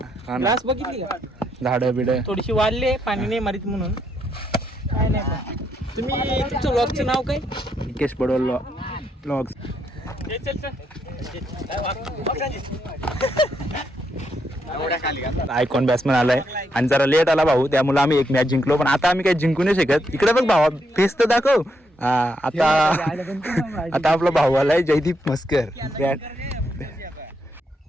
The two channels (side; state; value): both; normal; correlation 0.78